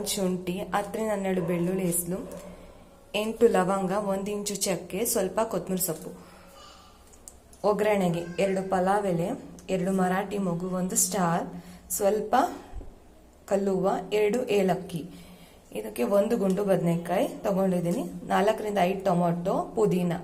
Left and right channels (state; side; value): identical; both; correlation 1.00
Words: ಶುಂಠಿ, 10ರಿಂದ 12 ಬೆಳ್ಳುಳ್ಳಿ ಹೆಸರು, 8 ಲವಂಗ, 1 ಇಂಚು ಚಕ್ಕೆ, ಸ್ವಲ್ಪ ಕೊತ್ತಂಬರಿ ಸೊಪ್ಪು. ಒಗ್ಗರಣೆಗೆ 2 ಪಲಾವ್ ಎಲೆ, 2 ಮರಾಠಿ ಮೊಗ್ಗು, 1 ಸ್ಟಾರ್, ಸ್ವಲ್ಪ ಕಲ್ಲುವ, 2 ಏಲಕ್ಕಿ. ಇದಕ್ಕೆ 1 ಗುಂಡು ಬದನೆಕಾಯಿ ತಗೊಂಡಿದ್ದೀನಿ, 4ರಿಂದ 5 ಟೊಮೊಟೊ, ಪುದೀನ.